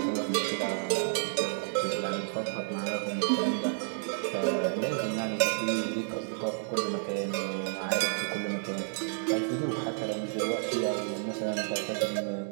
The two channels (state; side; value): silent; left; digital silence